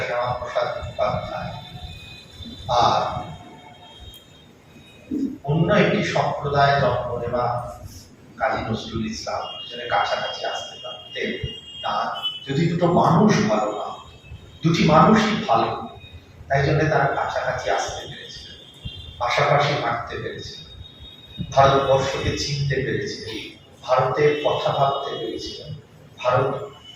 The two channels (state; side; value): identical; both; correlation 1.00